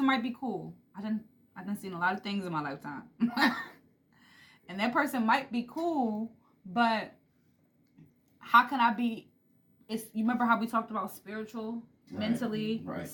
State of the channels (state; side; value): identical; both; correlation 1.00